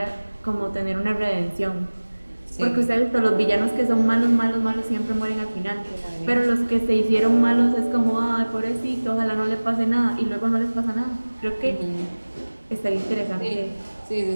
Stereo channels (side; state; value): both; inverted; correlation -1.00